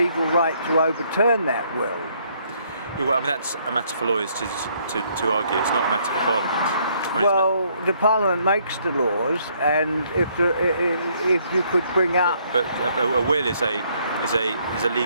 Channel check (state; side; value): inverted; both; correlation -0.68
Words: right to overturn that will. Yeah, well, I mean, that's a matter for lawyers to argue. It's not a matter for Parliament. I mean, the Parliament makes the laws, and if you could bring up, but a will is a